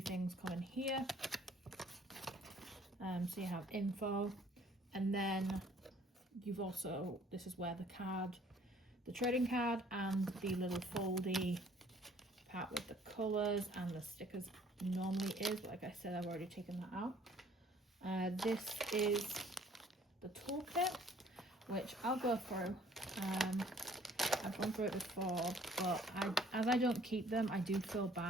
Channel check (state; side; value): normal; both; correlation 0.57